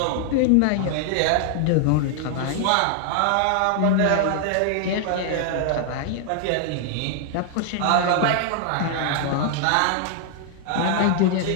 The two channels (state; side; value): different; both; correlation 0.00